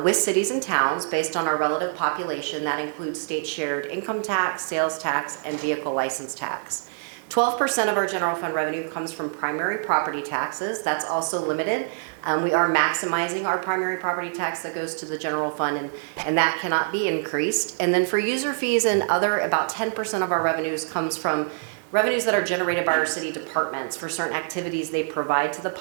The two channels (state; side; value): silent; left; 55 dB below the other